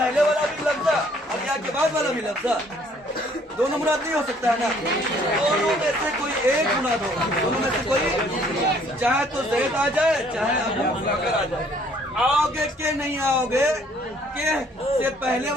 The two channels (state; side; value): normal; both; correlation 0.61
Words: والا بھی لفظ اور یا کے بعد والا بھی لفظ. دونوں مراد نہیں ہو سکتا ہے نا. دونوں میں سے کوئی ایک مراد ہو, دونوں میں سے کوئی, چاہے تو زید آ جائے چاہے ابو بکر آ جائے. آؤ گے کہ نہیں آؤ گے, کہ سے پہلے